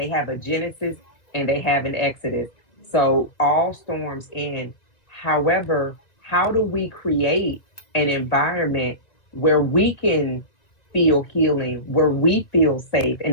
have a genesis and they have an exodus. So all storms end. However, how do we create an environment where we can feel healing, where we feel safe, an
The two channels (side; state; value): right; late; 1.9 ms